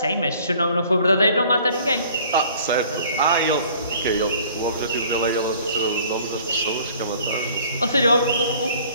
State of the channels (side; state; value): both; inverted; correlation -0.53